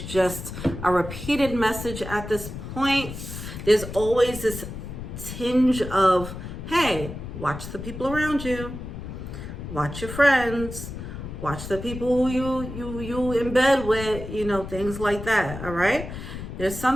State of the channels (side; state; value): left; noise; rumble, 9 dB below the sound